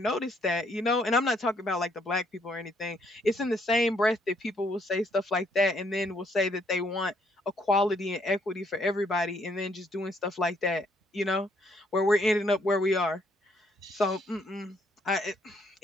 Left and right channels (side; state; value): both; normal; correlation 0.69